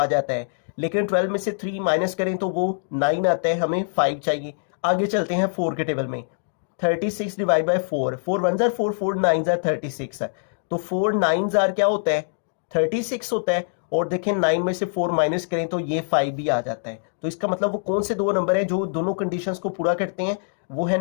जाता है, लेकिन 12 में से 3 माइनस करें तो वो 9 आता है, हमें 5 चाहिए। आगे चलते हैं 4 के टेबल में, 36 डिवाइड बाई 4, 4 1 4 4 9 36, तो 4 9 क्या होता है 36 होता है। और देखें 9 में से 4 माइनस करें तो ये 5 भी आ जाता है। तो इसका मतलब वो कौन से दो नंबर है जो दोनों कंडीशंस को पूरा करते हैं, वो है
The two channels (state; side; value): silent; right; digital silence